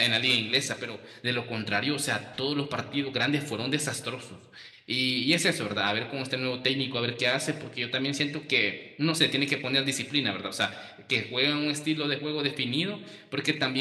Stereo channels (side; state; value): both; identical; correlation 1.00